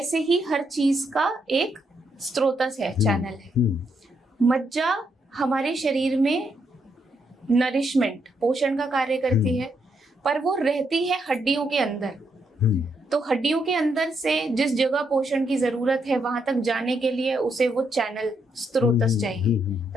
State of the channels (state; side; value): normal; both; correlation 0.78